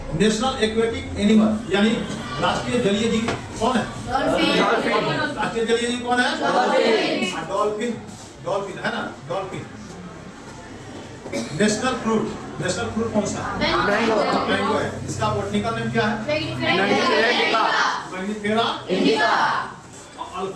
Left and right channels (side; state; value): both; identical; correlation 1.00